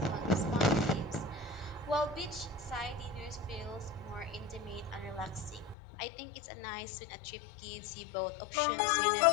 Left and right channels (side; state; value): right; drops out; at 5.8 s